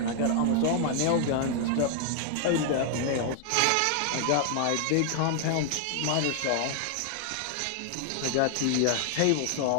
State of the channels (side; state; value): both; different; correlation 0.00